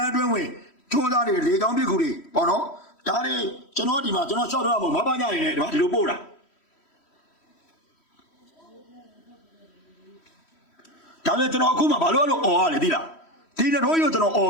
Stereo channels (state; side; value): late; right; 3.1 ms